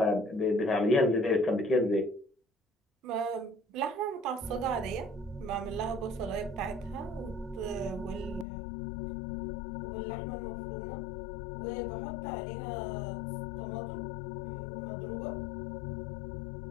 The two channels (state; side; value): drops out; right; at 8.5 s